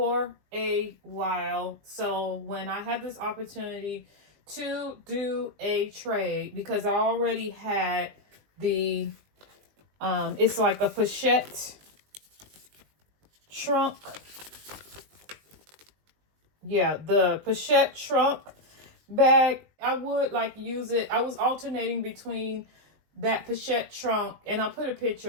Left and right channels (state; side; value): late; left; 20 ms